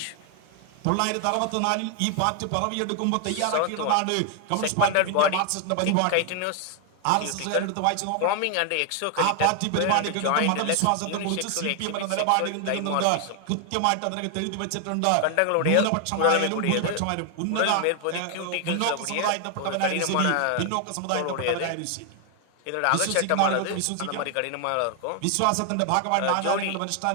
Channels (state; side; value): different; both; correlation 0.00